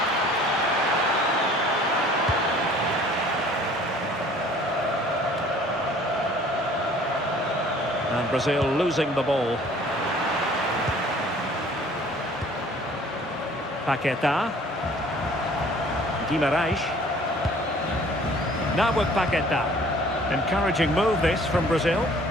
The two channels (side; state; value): both; normal; correlation 0.53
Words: And Brazil losing the ball. Paquetá. Guimarães. Now with Paquetá. Encouraging move this from Brazil.